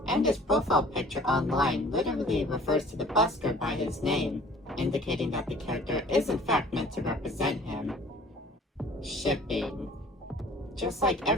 and his profile picture online literally refers to the busker by his name, indicating that the character is in fact meant to represent him. Shipping. Just like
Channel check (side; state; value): both; normal; correlation 0.50